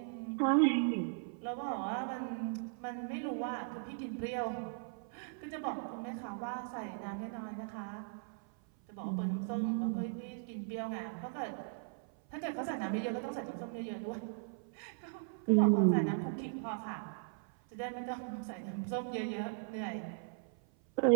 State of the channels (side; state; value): left; silent; 53 dB below the other